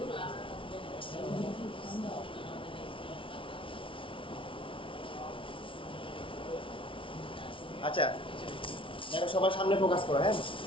আমরা আচ্ছা দেখো সবাই সামনে ফোকাস করো, হ্যাঁ।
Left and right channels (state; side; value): late; right; 0.25 ms